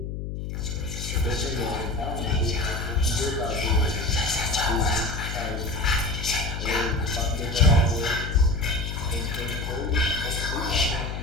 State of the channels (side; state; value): left; noise; hum, 5 dB below the sound